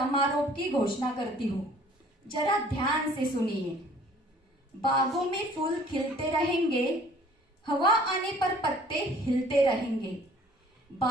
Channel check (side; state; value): both; normal; correlation 0.53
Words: की घोषणा करती हूँ. जरा ध्यान से सुनिए. बागों में फूल खिलते रहेंगे, हवा आने पर पत्ते हिलते रहेंगे.